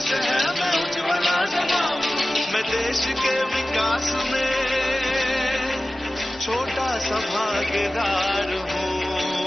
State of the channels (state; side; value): normal; both; correlation 0.96